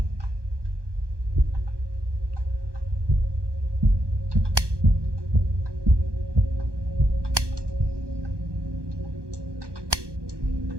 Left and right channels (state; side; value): late; left; 1.2 ms